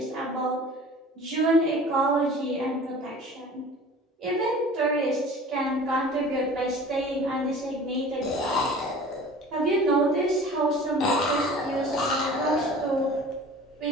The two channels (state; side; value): normal; both; correlation 0.43